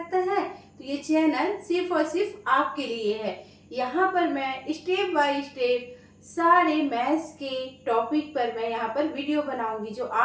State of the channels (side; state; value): both; identical; correlation 1.00